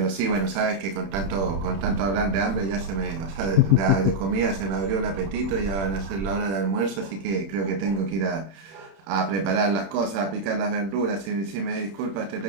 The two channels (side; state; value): left; late; 31 ms